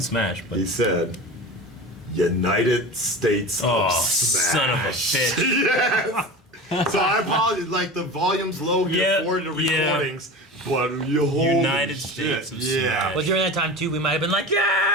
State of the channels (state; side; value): normal; both; correlation 0.31